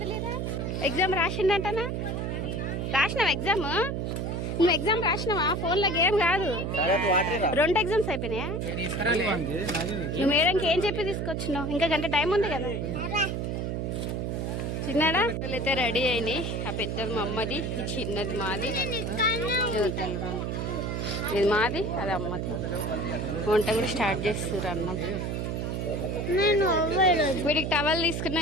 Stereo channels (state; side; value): noise; right; hum, 2 dB below the sound